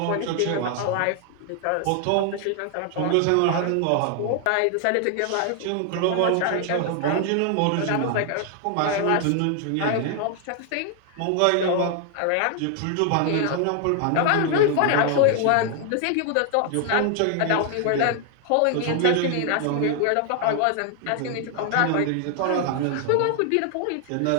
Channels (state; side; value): different; both; correlation 0.00